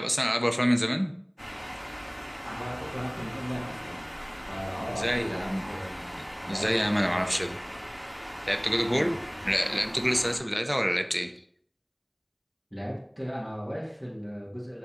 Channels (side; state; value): both; identical; correlation 1.00